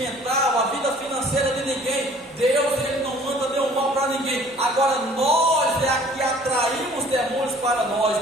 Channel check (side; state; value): both; normal; correlation 0.53